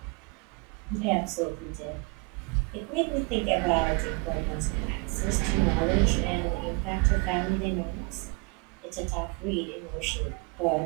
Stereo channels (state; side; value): quieter; left; 30.8 dB